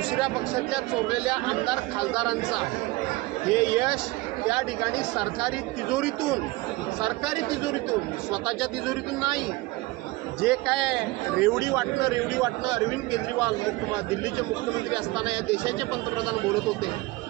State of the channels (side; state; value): left; quieter; 21.1 dB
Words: पक्षाच्या चोरलेल्या आमदार खासदारांचं आहे. हे यश त्या ठिकाणी सरकारी तिजोरीतून स्वतःच्या तिजोरीतून नाही. जे काय रेवडी वाटणं अरविंद केजरीवाल दिल्लीचे मुख्यमंत्री असताना या देशाचे पंतप्रधान बोलत होते.